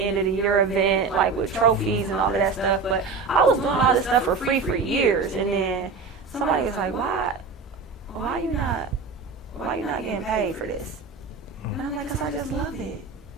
of the year event, with trophies and all of that stuff. But I was doing all this stuff for free for years, and then somebody was like, why you not getting paid for this? And I'm like, 'cause I just love it.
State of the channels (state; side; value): quieter; left; 4.6 dB